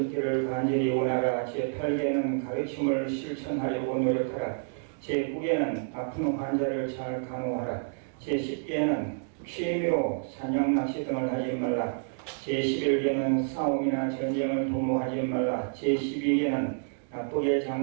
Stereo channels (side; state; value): left; silent; digital silence